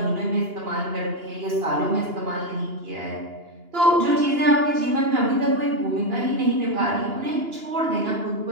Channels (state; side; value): late; left; 2.9 ms